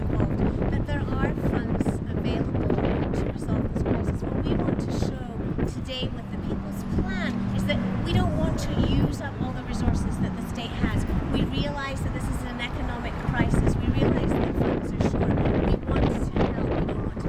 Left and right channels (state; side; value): identical; both; correlation 1.00